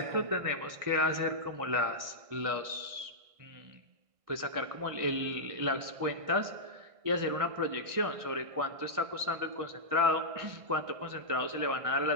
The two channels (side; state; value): left; late; 1.6 ms